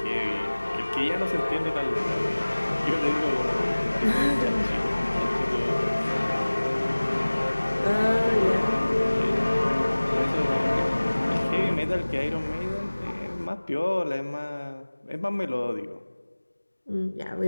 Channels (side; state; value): both; inverted; correlation -1.00